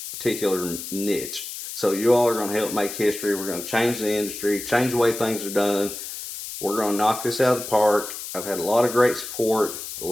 particular niche. So you all are going to help make history. We're going to change the industry, change the way things are done. We're going to knock this out of the park. I've had a lot of great support. I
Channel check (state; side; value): noise; left; hiss, 9 dB below the sound